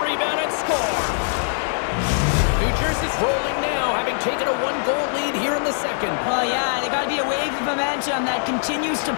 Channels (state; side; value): silent; right; digital silence